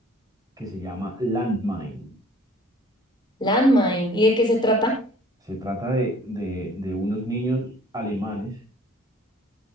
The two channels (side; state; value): both; normal; correlation 0.53